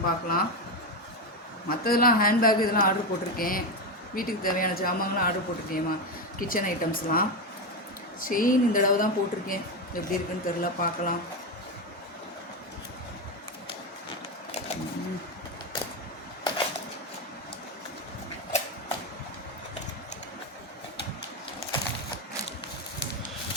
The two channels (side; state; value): both; normal; correlation 0.12